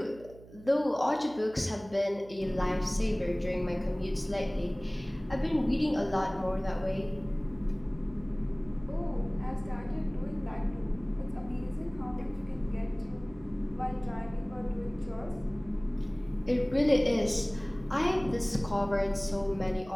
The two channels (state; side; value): noise; right; hum, 20 dB below the sound